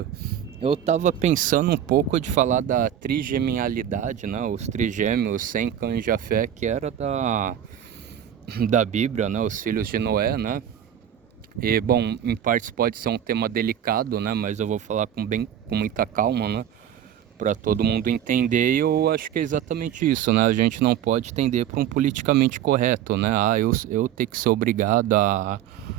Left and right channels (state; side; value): quieter; left; 10.1 dB